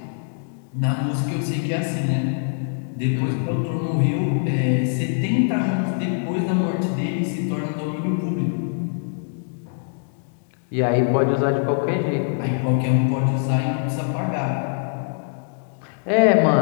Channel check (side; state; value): right; silent; digital silence